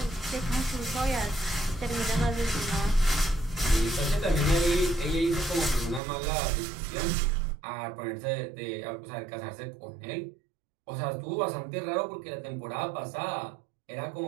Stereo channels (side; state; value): left; drops out; at 6.0 s